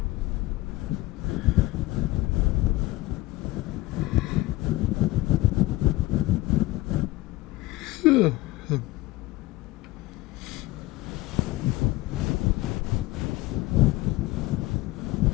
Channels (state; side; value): quieter; right; 18.6 dB